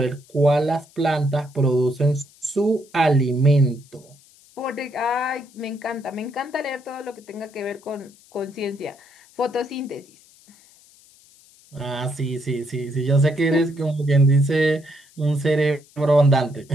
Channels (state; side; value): noise; left; hiss, 27 dB below the sound